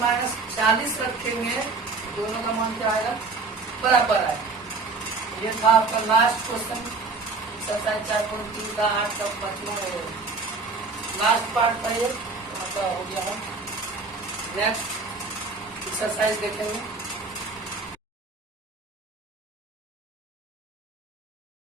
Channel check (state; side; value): quieter; left; 4.0 dB